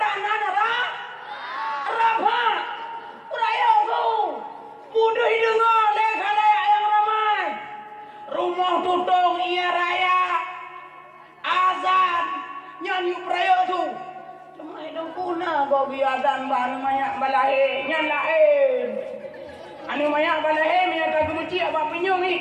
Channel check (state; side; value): identical; both; correlation 1.00